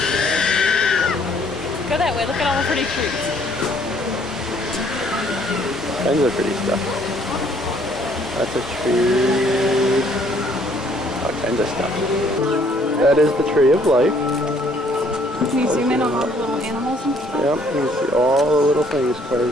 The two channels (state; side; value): normal; both; correlation 0.62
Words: Go that way. Look at all the pretty trees. Tons of pretty stuff. Lots of trees. All kinds of stuff. That is the Tree of Life. Can you zoom in on all the little animals and stuff? Yep, you can see all the little things